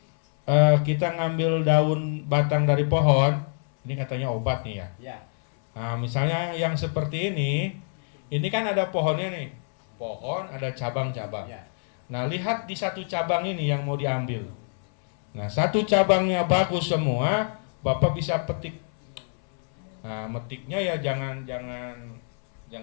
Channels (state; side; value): silent; right; 61 dB below the other